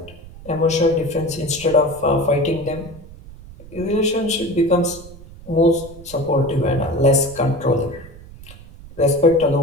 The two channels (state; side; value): noise; right; rumble, 18 dB below the sound